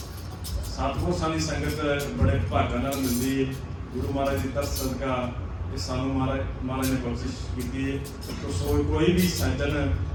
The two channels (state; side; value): identical; both; correlation 1.00